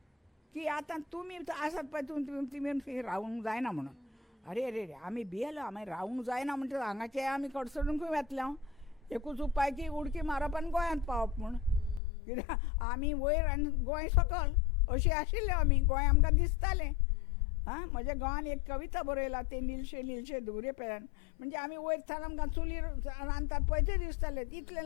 की आतां तुमी आसात पळय तुमी रावूंक जायना म्हणून. अरे रे रे आमी भियेलो, आमी रावूंक जायना म्हणटा हांगाचे आमी कडसडूंक वेतले. एकूच उपाय की उडकी मारप आनी गोंयांत पावप म्हूण. कित्याक आमी वयर आनी गोंय सकयल अशी आशिल्ले आमी. गोंय आमकां दिसतालें. म्हज्या गांवान एक कविता बरयला ते नीलशे नीलशे धुवरे पेल्यान. म्हणजे आमी वयर थान आमकां चुलीर रांदतात पळय तें दिसतालें. इतलें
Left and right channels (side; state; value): right; drops out; at 12.0 s